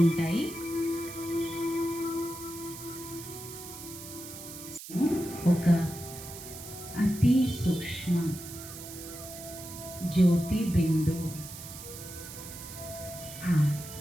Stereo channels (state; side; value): noise; right; hiss, 12 dB below the sound